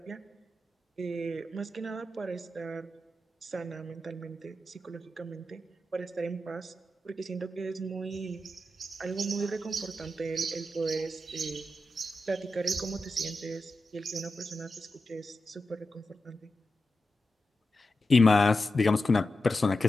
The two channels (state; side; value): normal; both; correlation 0.90